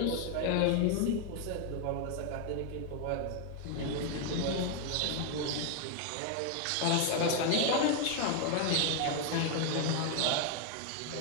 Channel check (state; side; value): different; both; correlation 0.01